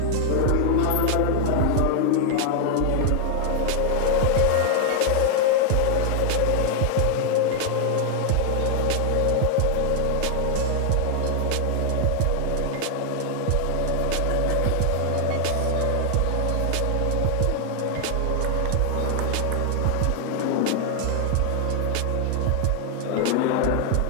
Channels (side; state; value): both; different; correlation 0.00